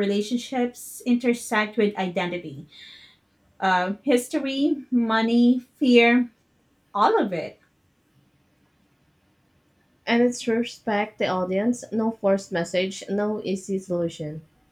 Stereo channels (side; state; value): both; identical; correlation 1.00